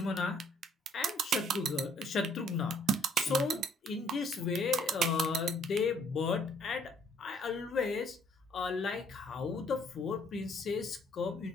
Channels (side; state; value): both; normal; correlation 0.62